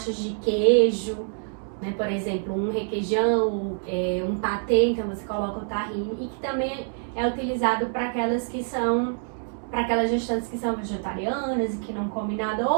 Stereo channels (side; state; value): left; silent; 61 dB below the other